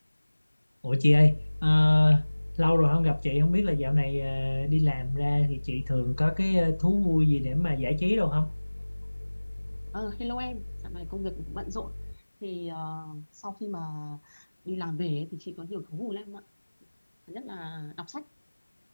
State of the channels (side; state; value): both; inverted; correlation -1.00